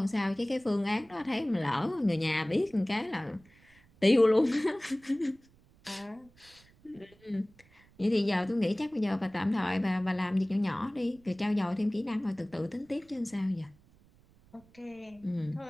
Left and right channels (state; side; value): noise; right; rumble, 29 dB below the sound